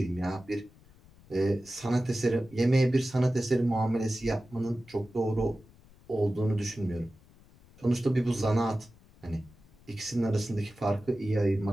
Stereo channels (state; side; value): noise; left; rumble, 26 dB below the sound